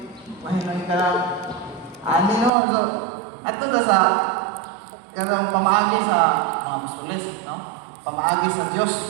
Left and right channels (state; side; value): drops out; left; at 2.5 s